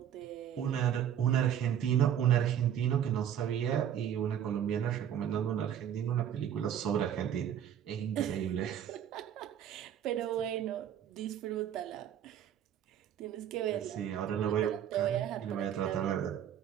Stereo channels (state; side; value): quieter; left; 9.8 dB